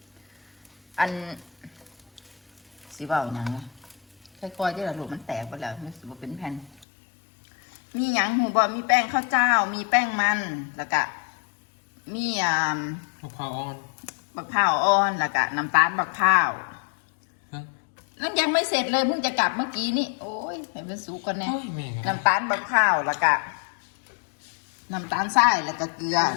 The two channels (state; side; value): drops out; right; at 6.9 s